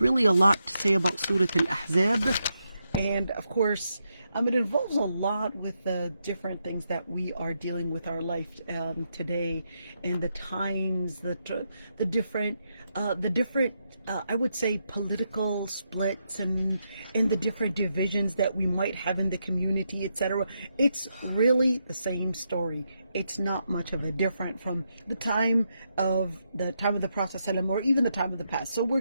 a lot to say about Surah Al-Ahzab. And of course, it involves a lot with the different things that we are dealing with our life today, and the times, the different, I would say, political splits and the different divisions that we might have in the community, etc. It's really the same story. It's not much of a different from the time of the Prophet ﷺ or even the time of the past. So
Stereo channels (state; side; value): inverted; both; correlation -0.82